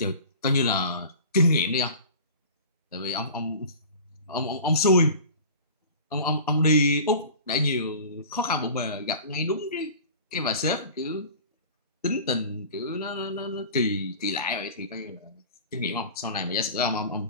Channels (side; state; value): both; inverted; correlation -0.39